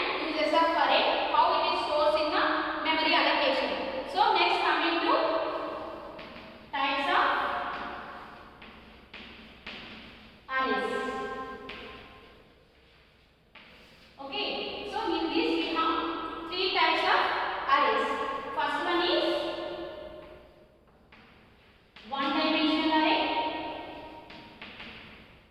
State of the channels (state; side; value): identical; both; correlation 1.00